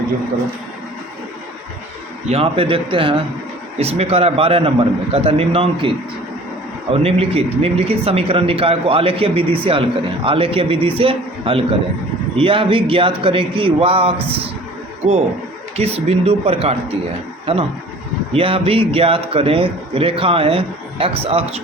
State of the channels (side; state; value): both; normal; correlation 0.47